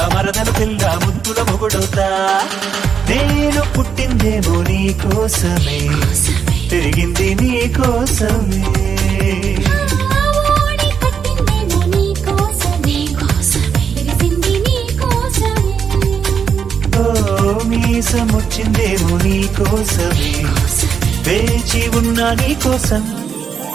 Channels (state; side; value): quieter; left; 6.9 dB